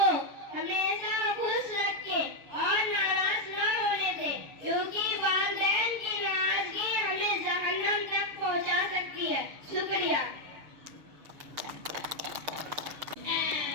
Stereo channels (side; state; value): left; late; 6.5 ms